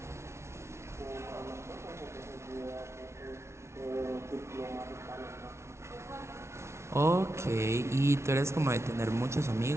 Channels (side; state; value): left; late; 0.13 ms